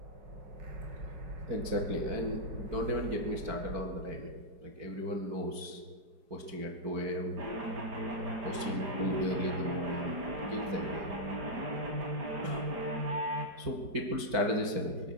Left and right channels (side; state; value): left; late; 4.5 ms